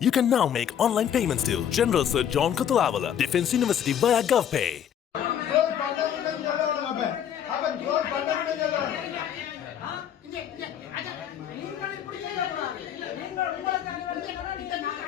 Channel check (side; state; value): right; quieter; 9.4 dB